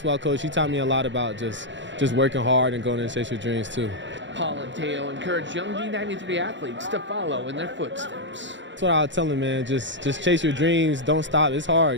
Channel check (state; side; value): late; left; 0.54 ms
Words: coach, he taught me a lot about just working hard and going to chase your dreams too. Paul and Teo encourage young D93 athletes to follow in their footsteps. That's what I would tell them, man. Just chase your dreams. Don't stop. It's hard.